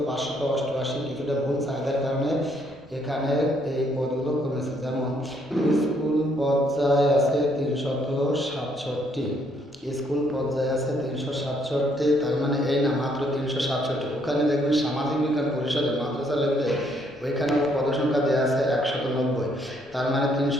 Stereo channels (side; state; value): both; normal; correlation 0.69